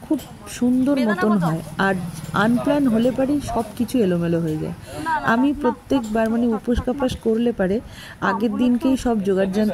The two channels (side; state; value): both; identical; correlation 1.00